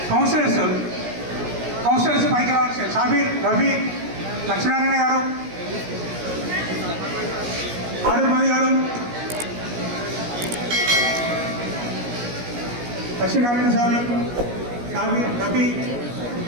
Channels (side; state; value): left; late; 17 ms